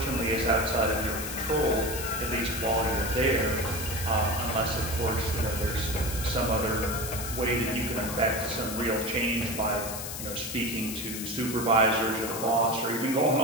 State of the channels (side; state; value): left; noise; hiss, 7 dB below the sound